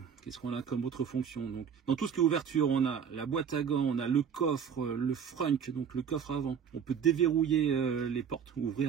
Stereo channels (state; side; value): quieter; left; 7.4 dB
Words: Qu'est-ce qu'on a comme autre fonction? Donc dans tout ce qui est ouverture, on a la boîte à gants, on a le coffre, le frunk, donc le coffre avant. On peut déverrouiller les portes,